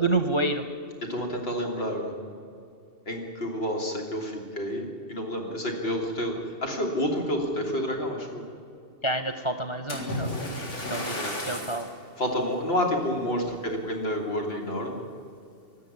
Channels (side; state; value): right; late; 2.7 ms